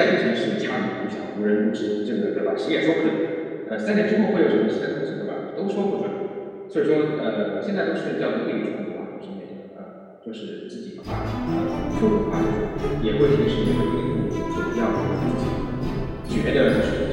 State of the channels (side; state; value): both; identical; correlation 1.00